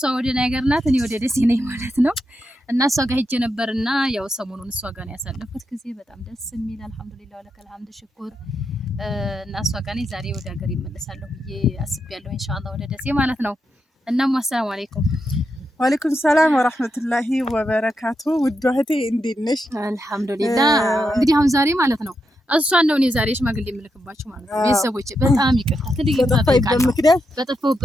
ወደ ነገር ናት፣ እኔ ወደ ደሴ ነኝ ማለት ነው። እና እሷ ጋር ሄጄ ነበርና ያው ሰሞኑን እሷ ጋር ነው ያሳለፍኩት ጊዜ በጣም ደስ የሚል አልሐምዱሊላህ ወለከል ሐምድ ሽኩር። እና እሷ ጋር ነኝ ዛሬ ወደ ሀገር ይመለሳለሁ ብዬ አስቤያለሁ ኢንሻአላህ ወደ ደሴ ማለት ነው። እናም አሰላሙ አለይኩም። ወአለይኩም ሰላም ወራህመቱላሂ ወበረካቱ። ውድ እህቴ እንዴት ነሽ? አልሐምዱሊላህ። እንግዲህ አሁን ዛሬ ማለት ነው እሷን ነው እኔ ዛሬ ሽማግሌ የምልክባችሁ ማለት ነው። ቤተሰቦቼ በጣም ይቅርታ ትልቅ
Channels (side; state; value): both; normal; correlation 0.84